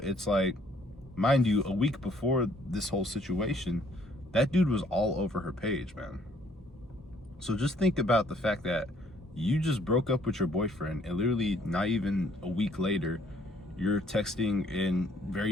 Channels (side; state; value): both; normal; correlation 0.63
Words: like, mind you, a week before this whole situation, that dude was all over her page, man. So just think about the fact that you just broke up with your boyfriend, and literally not even a week later, you're texting and